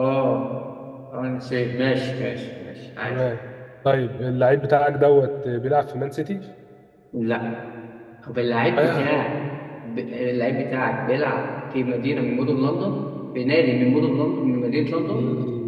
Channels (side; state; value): both; identical; correlation 1.00